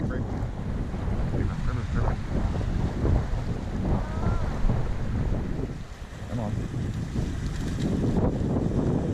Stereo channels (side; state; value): both; identical; correlation 1.00